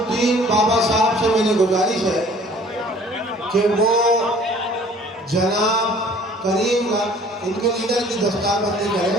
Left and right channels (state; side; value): normal; both; correlation 0.52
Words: बाबा साहब से मेरी गुजारिश है कि वो जनाब करीम का इनके लीडर की दस्तारबंदी